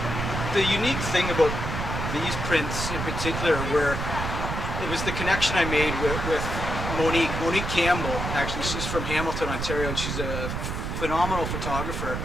the unique thing about these prints in particular, where it was the connection I made with Monique Campbell. Actually, she's from Hamilton, Ontario, and she's a phenomenal photographer.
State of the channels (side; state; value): right; noise; rumble, 3 dB below the sound